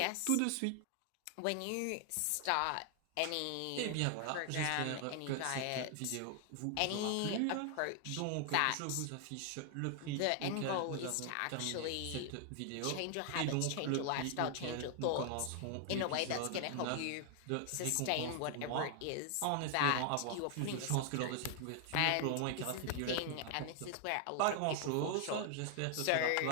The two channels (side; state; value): both; different; correlation 0.00